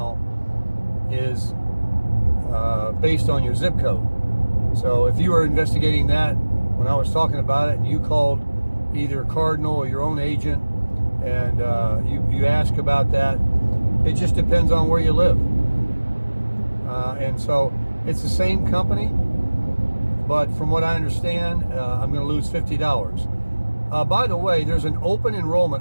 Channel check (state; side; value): inverted; both; correlation -1.00